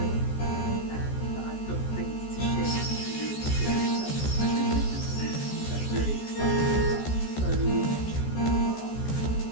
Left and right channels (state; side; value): late; right; 14 ms